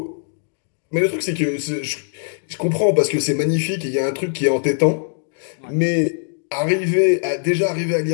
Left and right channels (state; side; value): silent; right; digital silence